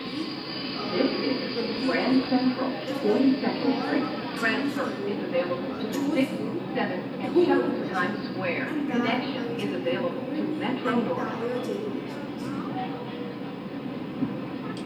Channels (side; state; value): both; identical; correlation 1.00